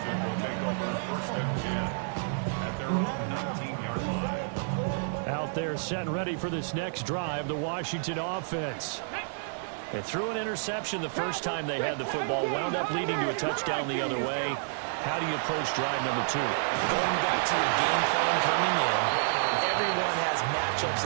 will take over 1st and 10 at their own 19-yard line. Out there set and ready for this next drive, the Washington offense. They threw an interception the first time they had the football, wound up leading to a touchdown the other way. How do you approach drive number 2? Going back to your game plan coming in, everyone has matchups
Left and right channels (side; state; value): left; silent; digital silence